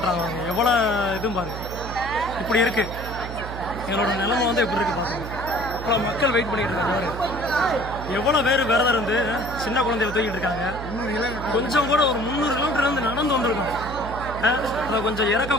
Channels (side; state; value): right; noise; hum, 9 dB below the sound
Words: எவ்வளோ இதுவும் பாருங்க. இப்படி இருக்கு எங்களோட நிலைமை வந்து எப்படி இருக்கு பாருங்க. இவ்வளோ மக்கள் வெயிட் பண்ணிட்டு இருக்காங்க. எவ்வளோ பேர் விரதம் இருந்து சின்ன குழந்தையில தூக்கிட்டு இருக்காங்க. கொஞ்சம் கூட ஒரு 300 கிலோமீட்டர் இருந்து நடந்து வந்திருக்கோம். அதை கொஞ்சம் இறக்க